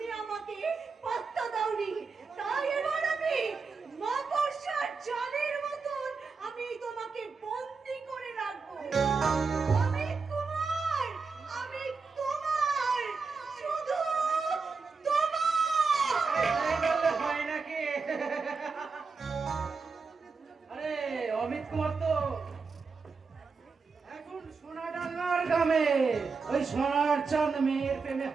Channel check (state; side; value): quieter; left; 4.7 dB